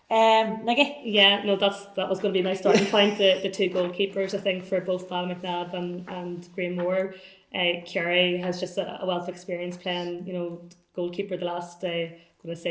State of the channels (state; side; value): identical; both; correlation 1.00